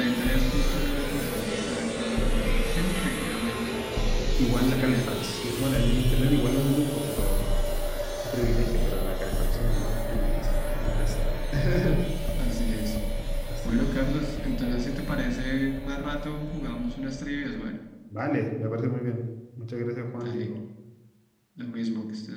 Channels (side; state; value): both; identical; correlation 1.00